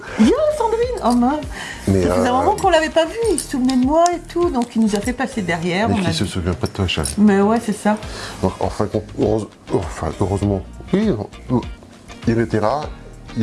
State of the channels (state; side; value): identical; both; correlation 1.00